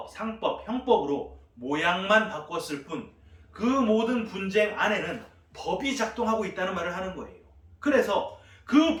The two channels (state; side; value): identical; both; correlation 1.00